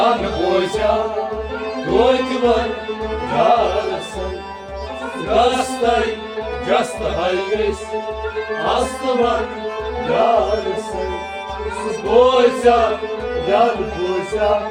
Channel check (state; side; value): identical; both; correlation 1.00